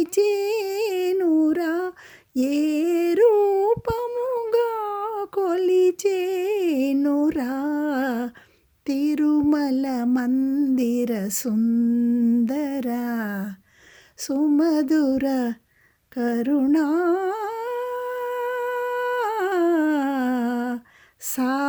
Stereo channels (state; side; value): identical; both; correlation 1.00